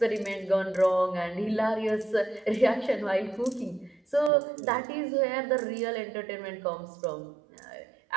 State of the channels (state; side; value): drops out; left; at 4.3 s